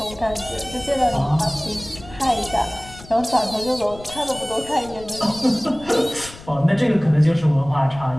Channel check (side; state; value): left; noise; rumble, 18 dB below the sound